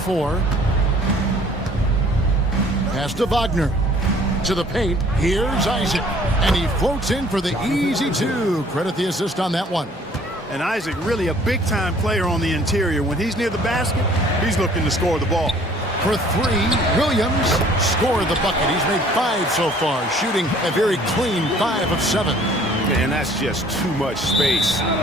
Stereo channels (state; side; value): normal; both; correlation 0.55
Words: Pass to Wagner. To the paint. Here's Isaac. And he floats in for the easy 2. Credit the assist on that one. And Isaac really a big-time player on the interior. When he's near the basket, he's looking to score the ball. For 3, Williams scored the bucket. He's made 5 so far, shooting a very clean 5 of 7. And that's just too much space